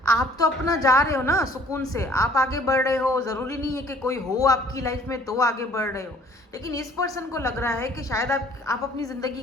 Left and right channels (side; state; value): both; normal; correlation 0.56